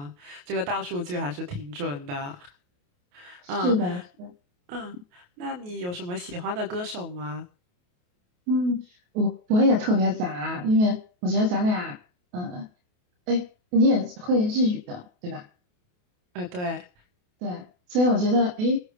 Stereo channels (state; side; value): late; left; 28 ms